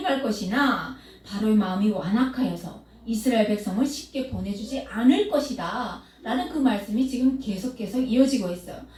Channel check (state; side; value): identical; both; correlation 1.00